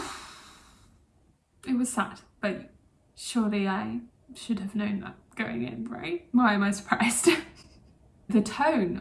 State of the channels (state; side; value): identical; both; correlation 1.00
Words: It was sad, but surely I should have known that going in, right? Why am I surprised? The tone